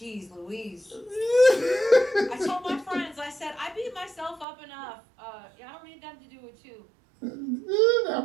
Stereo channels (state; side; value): drops out; left; at 4.5 s